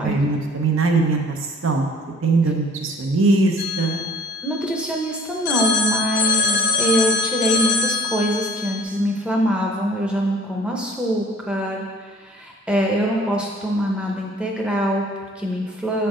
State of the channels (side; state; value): both; normal; correlation 0.53